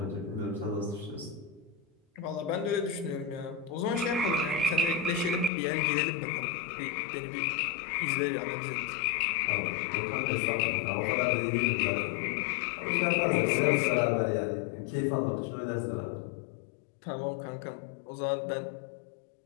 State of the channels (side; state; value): right; drops out; at 5.5 s